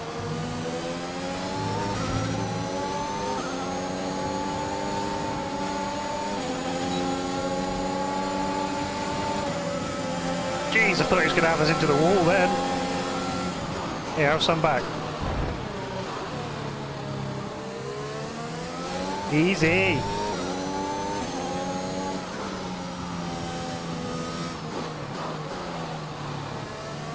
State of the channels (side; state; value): both; identical; correlation 1.00